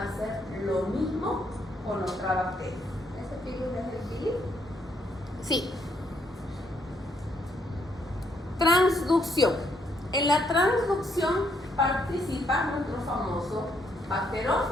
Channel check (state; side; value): normal; both; correlation 0.73